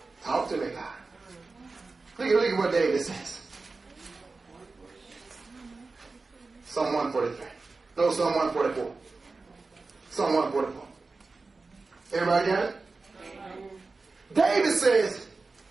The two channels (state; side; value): quieter; left; 3.8 dB